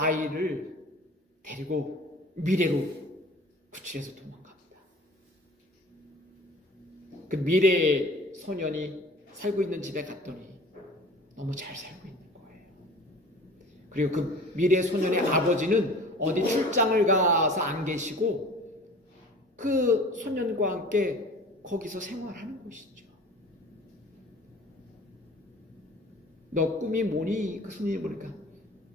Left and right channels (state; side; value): normal; both; correlation 0.44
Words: 데리고 미래로 구출해서 도망갑니다. 그 미래의 소년이 살고 있는 집에 갔더니 너무 잘 살고 있는 거예요. 그리고 그 미래 소년의 아버지는 어디 출장을 가서 안 계시고 그 소년과 함께 거기서 생활하는 것이죠. 너 꿈이 뭐니? 그 손님이 보니까